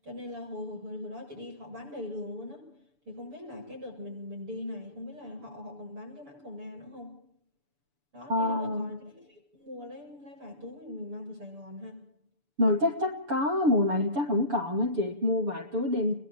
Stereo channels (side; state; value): left; late; 6.9 ms